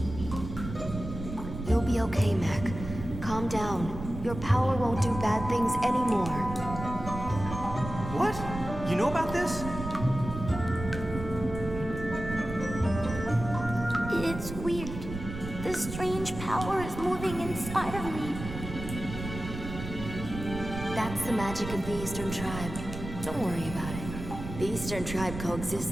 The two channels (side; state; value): right; noise; rumble, 9 dB below the sound